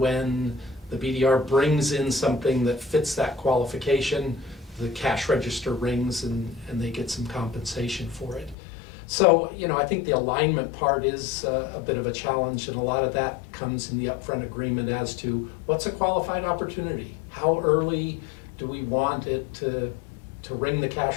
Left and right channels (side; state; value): right; drops out; at 8.6 s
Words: the BDR brings in something that fits that qualification, the cash register rings and they get some compensation for it. So, I think the alignment part is a bit of a challenge, and a lot of that comes in the upfront agreement as to what's a qualified opportunity? How early do we want it to ring the